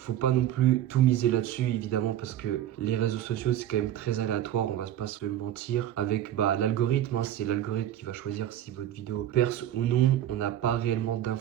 pas non plus tout miser là-dessus évidemment parce que les réseaux sociaux c'est quand même très aléatoire, on va pas se mentir. Avec l'algorithme, hein, c'est l'algorithme qui va choisir si votre vidéo perce ou non. On n'a pas réellement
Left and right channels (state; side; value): quieter; left; 11.8 dB